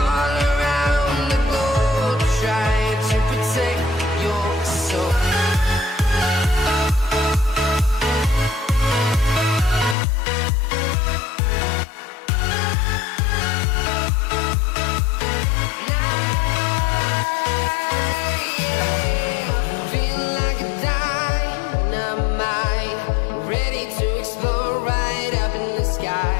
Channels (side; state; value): right; drops out; at 10.0 s